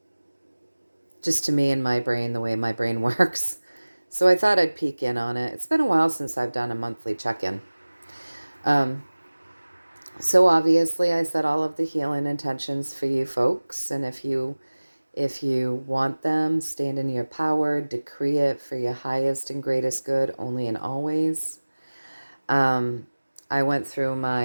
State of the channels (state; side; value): inverted; both; correlation -1.00